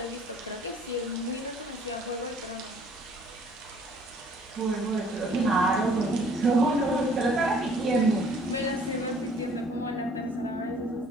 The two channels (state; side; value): noise; right; hum, 29 dB below the sound